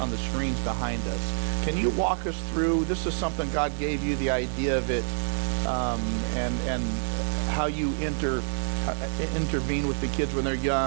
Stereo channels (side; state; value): left; silent; digital silence